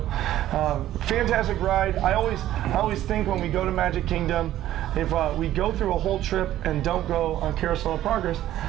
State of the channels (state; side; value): quieter; left; 13.2 dB